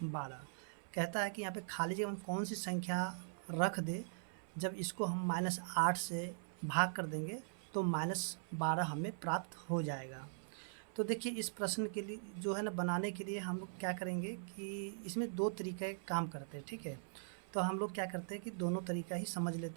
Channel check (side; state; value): left; silent; 50 dB below the other